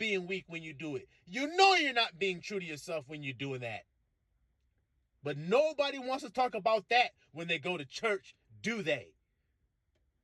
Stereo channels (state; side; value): identical; both; correlation 1.00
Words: weak when you do it. You know you're not being true to yourself when you're doing that. But nobody wants to talk about that when they go to church, do they?